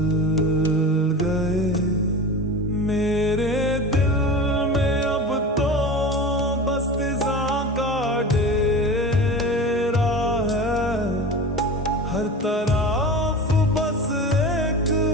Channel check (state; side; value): normal; both; correlation 0.32